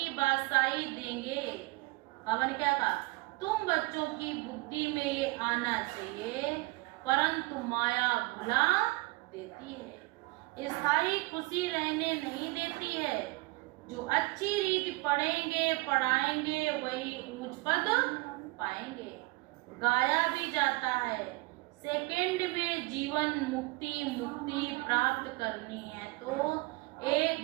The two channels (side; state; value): left; quieter; 23.6 dB